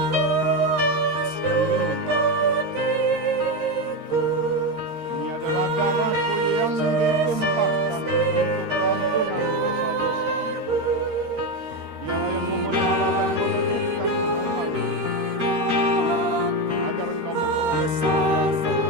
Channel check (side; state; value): left; late; 13 ms